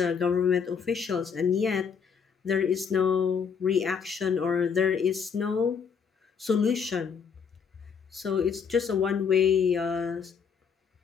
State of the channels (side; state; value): right; quieter; 6.5 dB